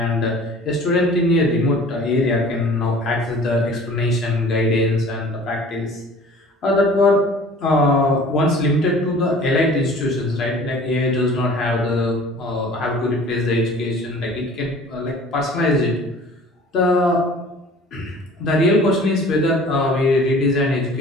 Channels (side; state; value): both; normal; correlation 0.47